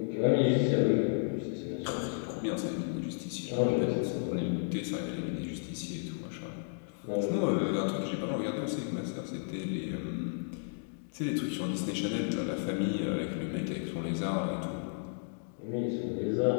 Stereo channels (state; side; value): silent; right; digital silence